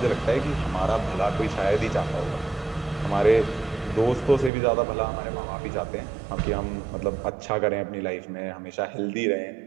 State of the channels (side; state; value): left; drops out; at 4.5 s